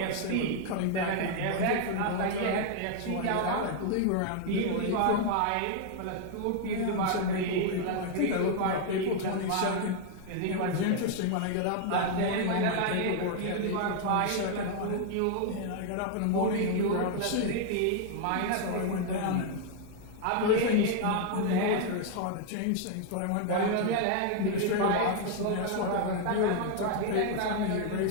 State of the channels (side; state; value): both; different; correlation 0.00